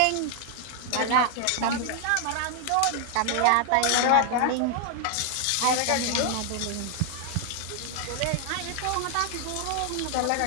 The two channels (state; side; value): different; both; correlation 0.00